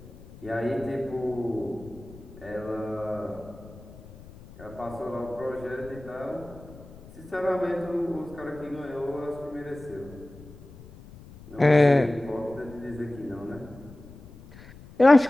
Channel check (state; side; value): noise; left; rumble, 19 dB below the sound